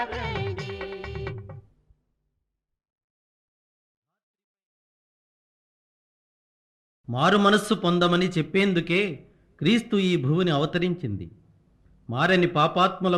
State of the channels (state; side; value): identical; both; correlation 1.00